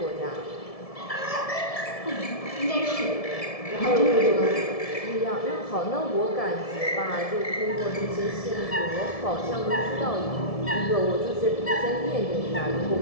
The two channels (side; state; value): right; late; 1.7 ms